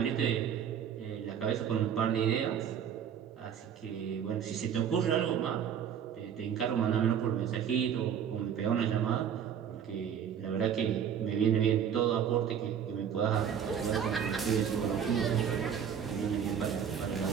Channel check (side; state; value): left; quieter; 8.3 dB